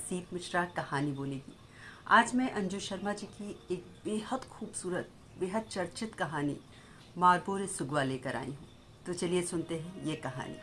मिश्रा कहानी बोलेगी। आज मैं अंजू शर्मा जी की एक बेहद खूबसूरत, बेहद चर्चित कहानी मारबोरे सुगवा लेकर आई हूँ। तो चलिए सुनते हैं ये कहानी।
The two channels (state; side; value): identical; both; correlation 1.00